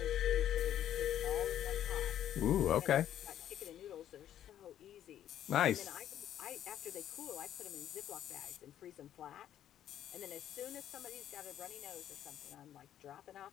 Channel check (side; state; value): right; quieter; 11.0 dB